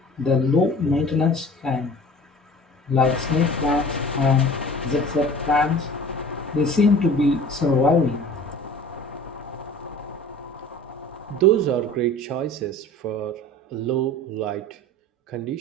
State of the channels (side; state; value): both; normal; correlation 0.43